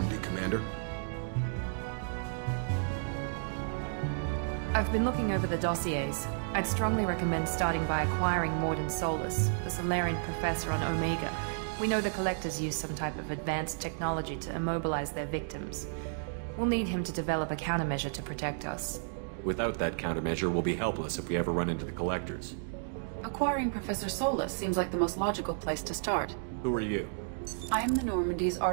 Commander. I've been looking over the dossiers. I'd strongly recommend starting by acquiring Mordin Solus, the Solarian professor on Omega. We know the Collectors use some type of advanced technology to immobilize their victims. We'll need him to develop a countermeasure to protect us. Without that countermeasure, we'll be helpless if we ever run into the Collectors. Acquiring Professor Solus seems like the most logical place to start. Who are you? I am the Normandy's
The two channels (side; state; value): left; silent; digital silence